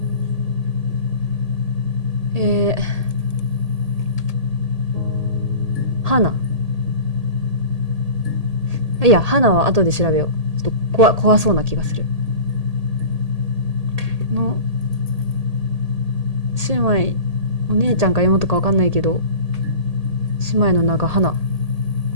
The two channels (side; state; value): left; late; 1.8 ms